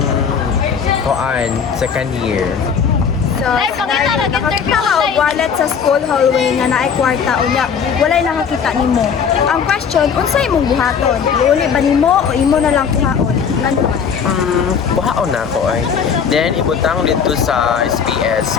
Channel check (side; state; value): right; quieter; 6.8 dB